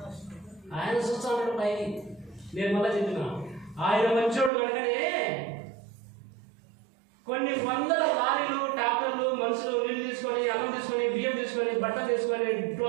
ఆయన చూస్తాడు పైకి. నేను మళ్ళీ చెప్పిన ఆయన మంచోడు కనుకనే కొన్ని వందల లారీలు, ట్రాక్టర్లు, మనుషులు నీళ్ళు తీసుకొని, అన్నం తీసుకొని, బియ్యం తీసుకొని, బట్టలు తీసుకొని,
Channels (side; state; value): left; drops out; at 4.5 s